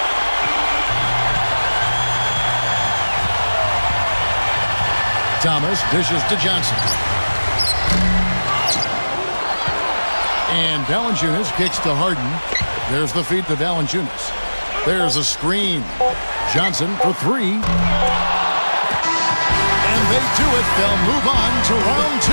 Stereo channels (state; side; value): inverted; both; correlation -1.00